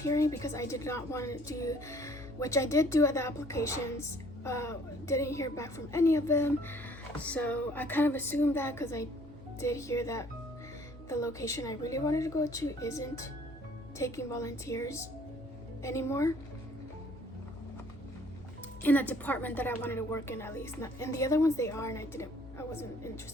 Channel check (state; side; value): normal; both; correlation 0.59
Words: because I did not want to do, which I did do at the applications. Didn't hear back from any of them, so I kind of assumed that because I did hear that the location I really wanted to go to isn't taking volunteers anymore in a department that I wanted to work in, at least. Not in the other ones they are, and I wasn't